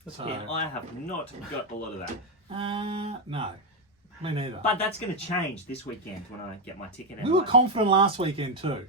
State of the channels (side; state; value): both; normal; correlation 0.06